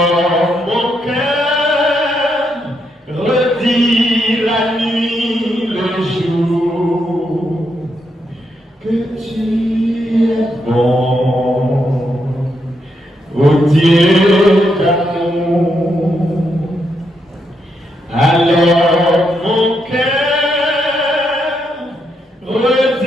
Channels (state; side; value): normal; both; correlation 0.80